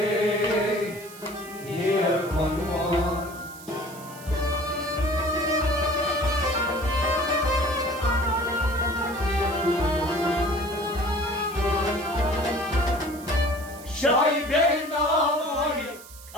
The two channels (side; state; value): right; noise; hiss, 18 dB below the sound